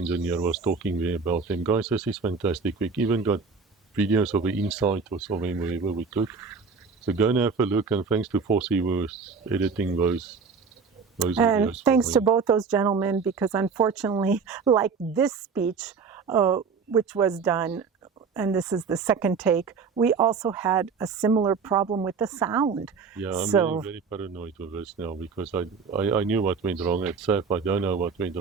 was talking there about them. Guys, this is fantastic. We even got videos of the inside or something wherever we could. So go and have a look, and thanks to Fossey who was editing those videos. And thanks to both those gentlemen, because unfortunately, like this speech, which was done, and this is the second take, we also had a similar problem with the sound. Yeah, I'm getting very paranoid with this now, because I knew what went wrong at SAF. I don't know what went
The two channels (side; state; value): left; quieter; 5.3 dB